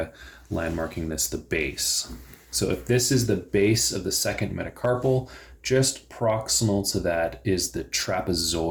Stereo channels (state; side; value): identical; both; correlation 1.00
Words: landmarking this the base. So if this is the base of the second metacarpal, just proximal to that is the